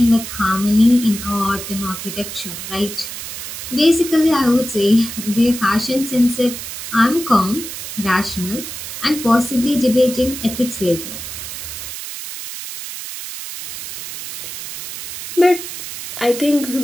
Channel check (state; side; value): noise; right; hiss, 8 dB below the sound